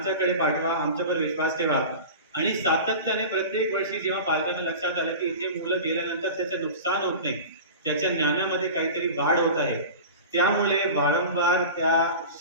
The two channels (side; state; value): both; inverted; correlation -0.33